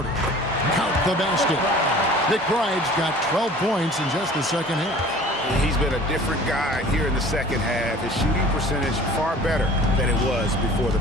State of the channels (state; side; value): normal; both; correlation 0.46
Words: Count the basket. McBride's got 12 points in just the second half. He's been a different guy here in the second half. His shooting percentage far better than it was before the